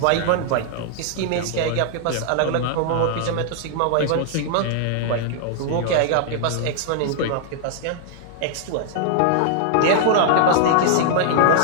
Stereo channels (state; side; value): different; both; correlation -0.01